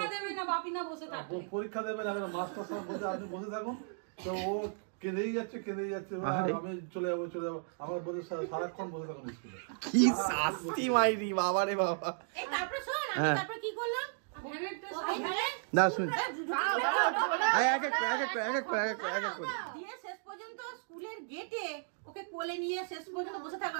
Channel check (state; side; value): silent; left; digital silence